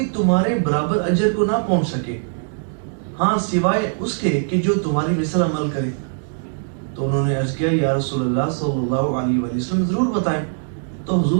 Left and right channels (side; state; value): left; silent; digital silence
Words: تمہارے برابر اجر کو نہ پہنچ سکے، ہاں سوائے اس کے کہ جو تمہاری مثل عمل کرے۔ تو انہوں نے عرض کیا، یا رسول اللہ صلی اللہ علیہ وآلہ وسلم ضرور بتائیں۔ تو